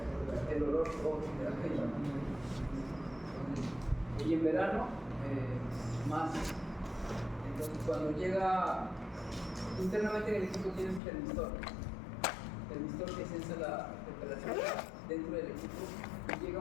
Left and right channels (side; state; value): right; drops out; at 11.0 s